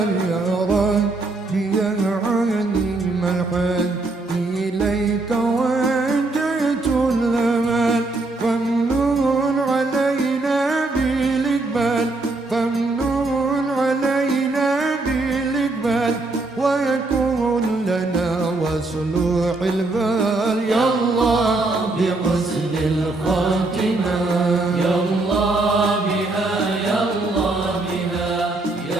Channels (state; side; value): quieter; left; 3.2 dB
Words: يا ربي يا عليم الحال إليك وجهت الآن فامنون علينا بالإقبال فامنون علينا بالإقبال ويكون لنا وصلوح البال يا الله بحسن الخاتمة. يا